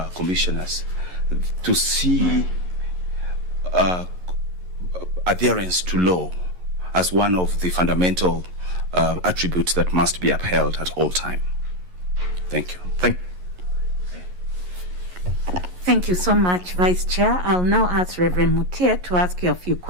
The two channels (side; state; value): left; late; 11 ms